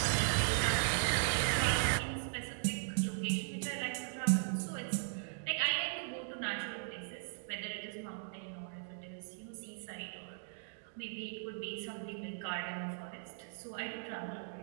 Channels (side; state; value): left; silent; digital silence